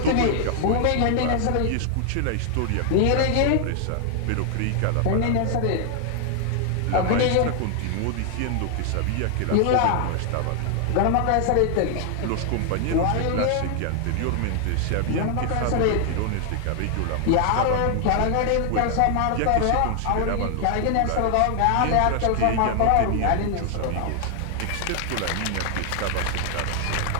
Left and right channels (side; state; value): both; different; correlation 0.00